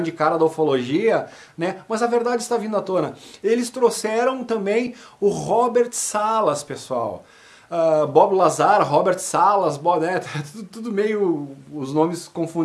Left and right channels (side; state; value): both; identical; correlation 1.00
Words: cara da ufologia, né, mas a verdade está vindo à tona. Eles trouxeram também o Robert Salas, pessoal. Bob Lazar, Robert Salas, né, tudo meio, os nomes